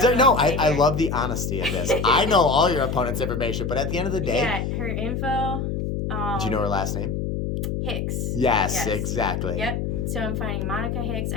love the honesty of this. I know all your opponent's information, but at the end of the day. Yeah, her info. Do you know her last name? Hicks. Yes, exactly. Yep. So I'm fighting Monica Hicks.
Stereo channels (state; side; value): noise; left; hum, 2 dB below the sound